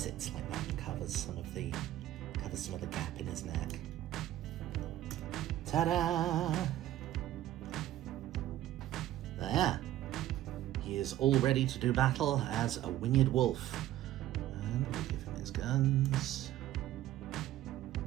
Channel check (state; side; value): quieter; left; 13.6 dB